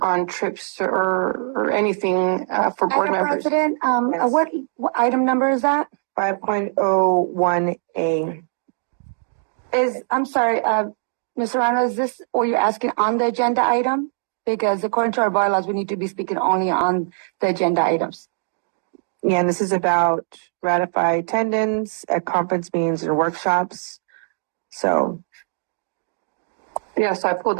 trips or anything for board Madam members. President, Yes. what item number is that? 5.01A. I'm sorry, Ms. Serrano, is this what you're asking on the agenda item? Because according to our bylaws, we need to be speaking only on the agenda items. Yeah, and this is about ratify attendance at conference meetings and workshops. So, Yeah, so I pulled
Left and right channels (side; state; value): left; silent; digital silence